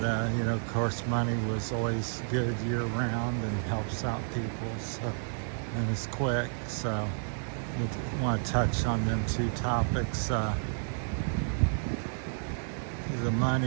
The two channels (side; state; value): left; silent; 57 dB below the other